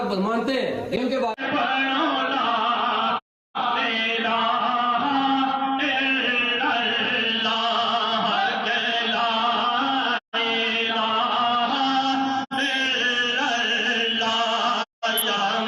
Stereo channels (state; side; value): identical; both; correlation 1.00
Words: کو مانتے ہیں، ان کے بعد